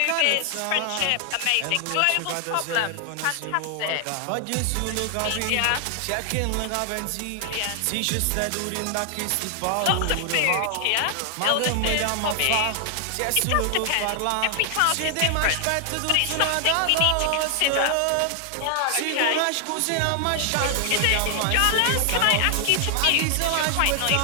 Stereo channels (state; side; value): different; both; correlation 0.00